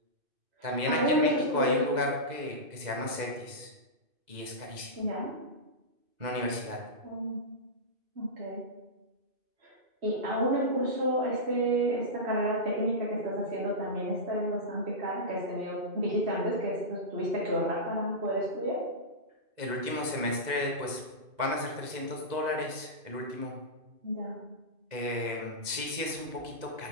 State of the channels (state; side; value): late; left; 2.5 ms